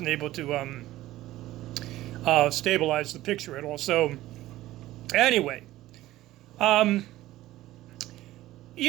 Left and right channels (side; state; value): left; quieter; 15.9 dB